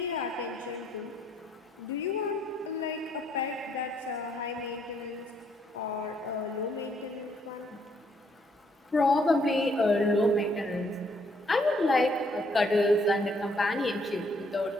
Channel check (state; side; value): normal; both; correlation 0.69